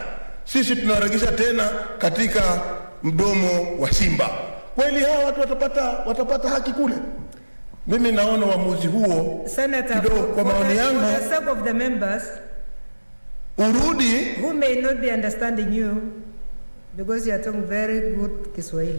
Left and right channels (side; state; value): both; inverted; correlation -1.00